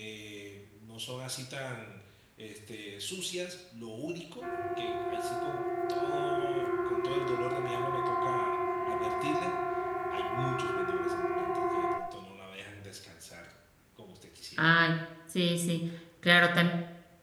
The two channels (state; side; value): identical; both; correlation 1.00